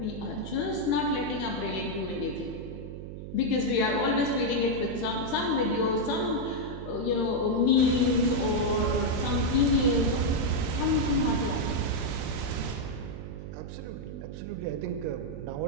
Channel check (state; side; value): noise; right; hum, 9 dB below the sound